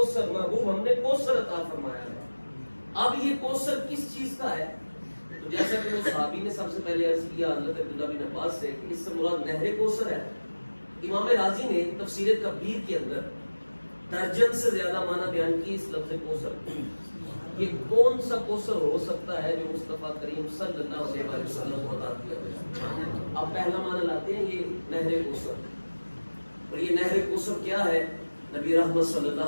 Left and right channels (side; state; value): both; inverted; correlation -1.00